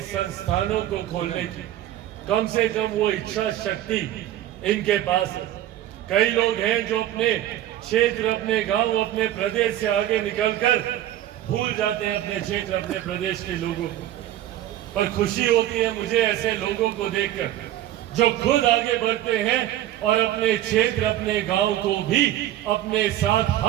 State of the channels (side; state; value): left; quieter; 13.1 dB